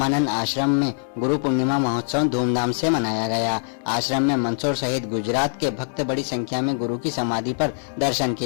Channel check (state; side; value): silent; right; digital silence